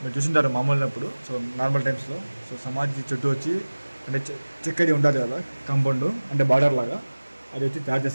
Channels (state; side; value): inverted; both; correlation -1.00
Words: చూసింటారు మామూలున్నప్పుడు సో నార్మల్ టైమ్స్లో సో సమాధి చుట్టూ వచ్చి అంటే చెక్కది ఉంటుంది కదా కాంపౌండ్ అంటే బార్డర్ లాగా అది వచ్చి తయారు